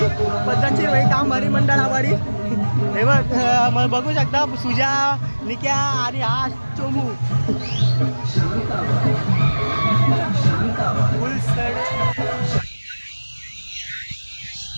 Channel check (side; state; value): both; inverted; correlation -1.00